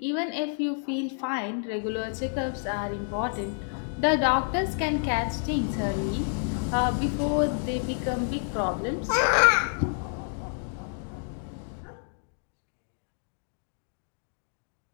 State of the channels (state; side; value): silent; right; digital silence